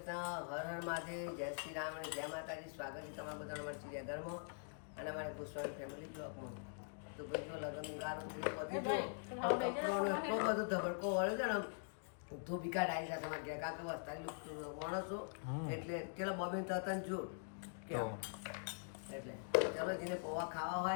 હર હર મહાદેવ, જય શ્રી રામ અને જય માતાજી. સ્વાગત છે તમારા બધાનો અમારા ચિડિયાઘરમાં અને અમારા ગોસ્વામી ફેમિલી બ્લોગમાં. તો ભાઈ જો લગ્ન ગારો કપડોનો એટલો બધો ધબડકો વળે છે ને, ધોબી કાઢ આવી જશે અમારે ત્યાં, કારણ કે વસ્તાલી માણસો એટલે પેલા બોબીન તતન જો એટલે ચલો જેને પૌવા ખાવા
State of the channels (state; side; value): silent; right; digital silence